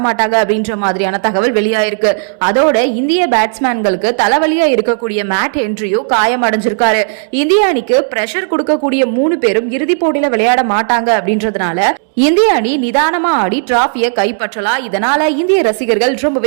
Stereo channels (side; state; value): left; silent; digital silence